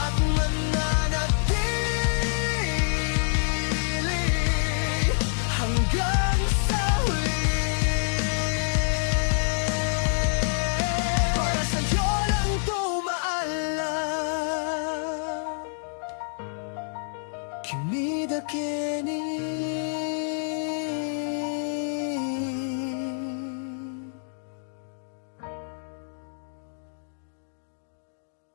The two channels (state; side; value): silent; right; digital silence